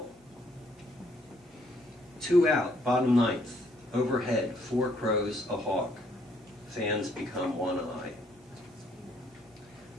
2 out, bottom 9th, overhead, 4 crows, a hawk, fans become one eye.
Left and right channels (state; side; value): normal; both; correlation 0.67